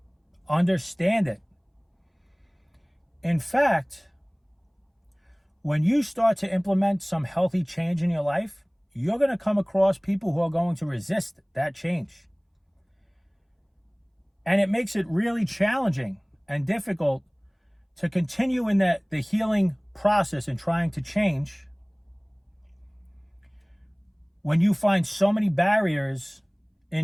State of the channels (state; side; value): identical; both; correlation 1.00